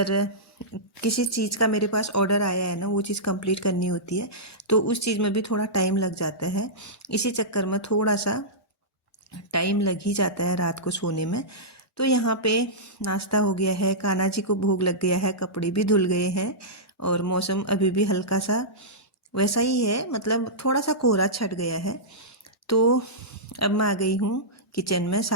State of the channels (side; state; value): both; normal; correlation -0.14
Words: किसी चीज़ का मेरे पास ऑर्डर आया है ना, वो चीज़ कंप्लीट करनी होती है, तो उस चीज़ में भी थोड़ा टाइम लग जाता है। इसी चक्कर में थोड़ा सा टाइम लग ही जाता है रात को सोने में। तो यहाँ पे नाश्ता हो गया है, कान्हा जी को भोग लग गया है, कपड़े भी धुल गए हैं और मौसम अभी भी हल्का सा वैसा ही है, मतलब थोड़ा सा कोहरा छट गया है। तो अब मैं आ गई हूँ किचन में,